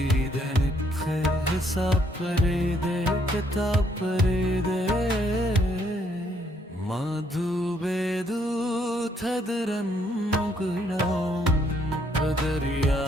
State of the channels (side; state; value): both; normal; correlation 0.70